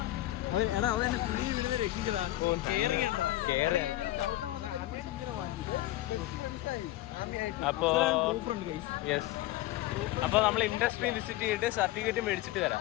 അപ്പൊ നമ്മൾ ഇൻഡസ്ട്രി വിസിറ്റ് ചെയ്തിട്ട് സർട്ടിഫിക്കറ്റ് മേടിച്ചിട്ട് വരാം.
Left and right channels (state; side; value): quieter; right; 16.0 dB